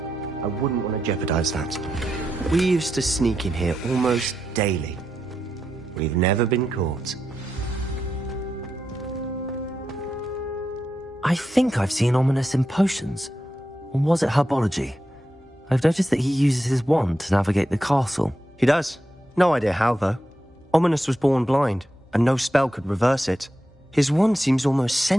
I wouldn't want to jeopardize that. We used to sneak in here almost daily. We've never been caught. I think I've seen Ominous in potions. Or was it herbology? I've noticed that he uses his wand to navigate the castle. He does. No idea how, though. Ominous was born blind, and no spell could reverse it. His wand seems almost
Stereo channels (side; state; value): both; normal; correlation 0.86